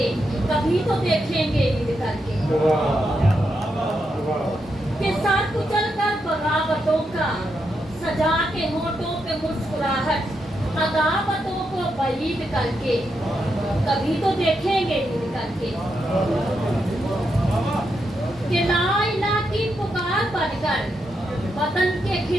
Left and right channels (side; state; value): both; normal; correlation 0.83